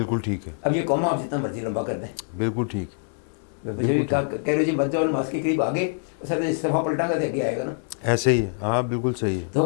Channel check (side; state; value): right; silent; digital silence